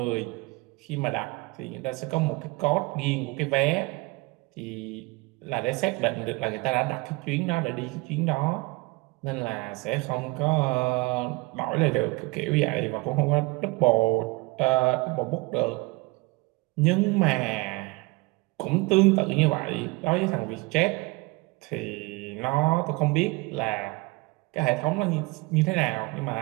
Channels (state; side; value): quieter; left; 24.3 dB